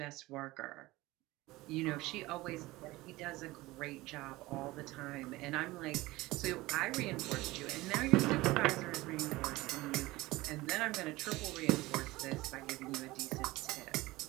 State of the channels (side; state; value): left; quieter; 19.6 dB